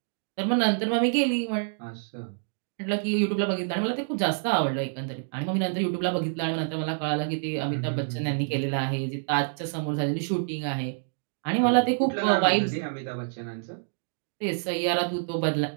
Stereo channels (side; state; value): left; silent; digital silence